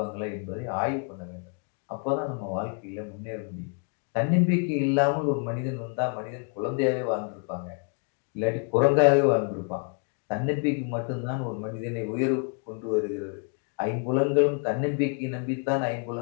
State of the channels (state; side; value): quieter; right; 39.0 dB